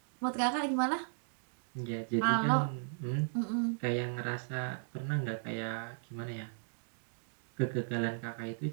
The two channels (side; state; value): left; silent; digital silence